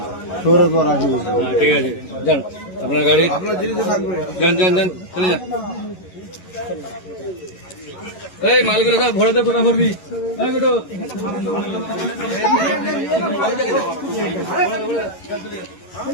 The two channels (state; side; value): late; right; 11 ms